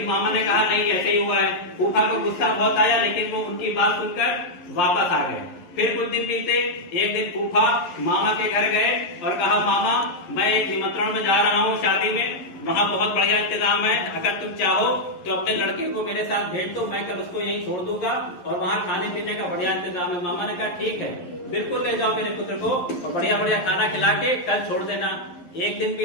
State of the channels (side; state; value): right; late; 11 ms